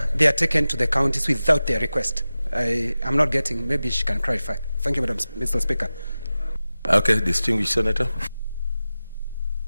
they are taken to the counties without their request. I'm not getting, maybe she can clarify. Thank you, Mr. Speaker. Okay, distinguished senator.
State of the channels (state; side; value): inverted; both; correlation -0.95